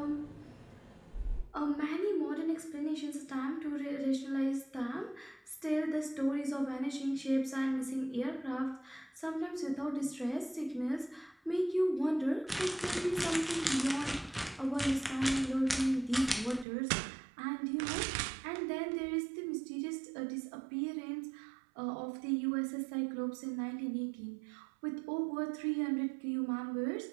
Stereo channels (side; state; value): left; drops out; at 16.7 s